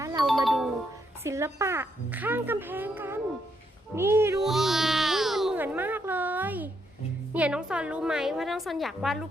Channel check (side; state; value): both; normal; correlation 0.76